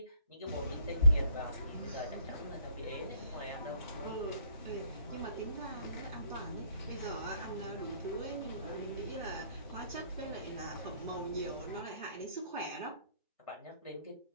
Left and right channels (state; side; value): inverted; both; correlation -0.65